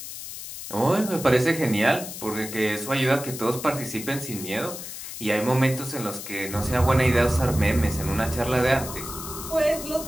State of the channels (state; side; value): noise; left; hiss, 10 dB below the sound